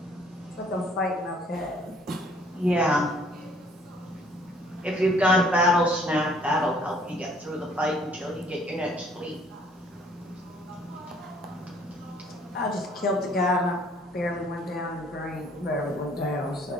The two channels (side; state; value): both; normal; correlation 0.60